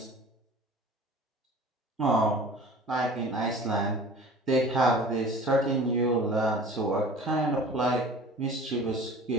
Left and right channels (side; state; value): both; normal; correlation 0.43